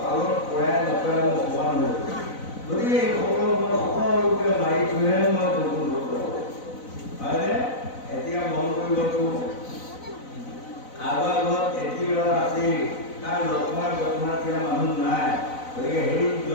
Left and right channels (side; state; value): right; late; 4.0 ms